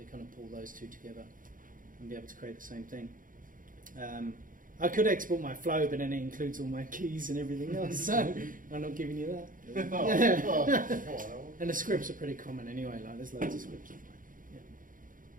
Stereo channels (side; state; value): left; late; 0.39 ms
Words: you kind of pull those two together and be able to create the same thing. I could export my flow, but then it includes all my keys and everything else, so I'm not giving you that. And the scripts are pretty common anyway, like there's loads of scripts. Yeah.